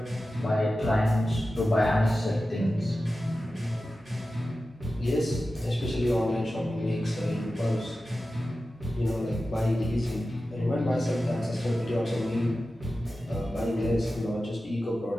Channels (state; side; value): normal; both; correlation 0.94